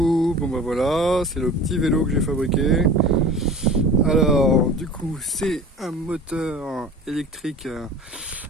bon bah voilà, c'est le petit vélo que j'ai fabriqué. Alors du coup c'est un moteur électrique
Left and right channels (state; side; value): normal; both; correlation 0.39